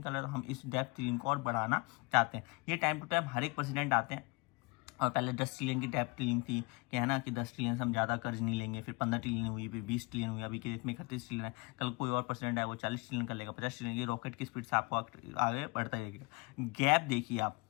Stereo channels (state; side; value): quieter; right; 26.9 dB